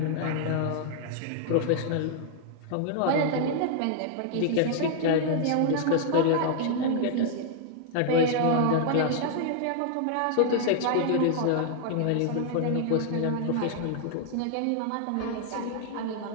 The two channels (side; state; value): both; different; correlation -0.01